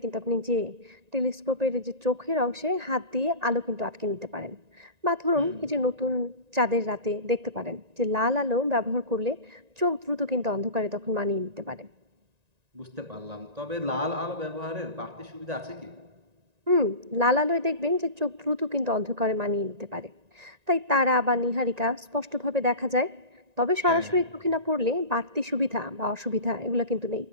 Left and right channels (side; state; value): left; late; 1.9 ms